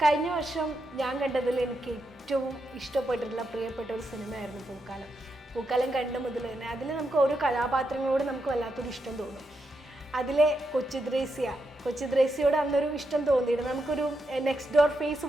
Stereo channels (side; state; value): both; normal; correlation 0.84